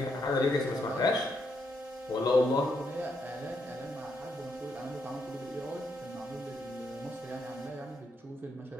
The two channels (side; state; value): both; normal; correlation 0.78